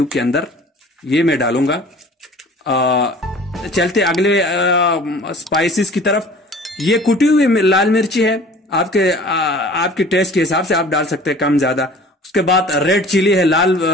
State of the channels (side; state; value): both; normal; correlation 0.46